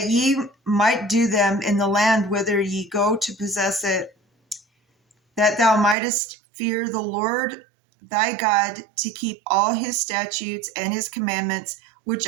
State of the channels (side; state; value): left; drops out; at 6.0 s